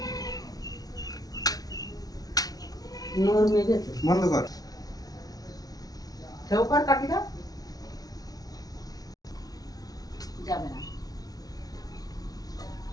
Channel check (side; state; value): right; late; 0.18 ms